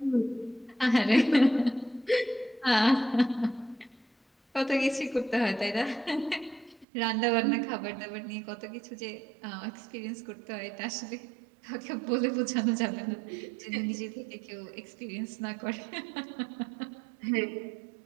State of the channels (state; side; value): drops out; left; at 6.9 s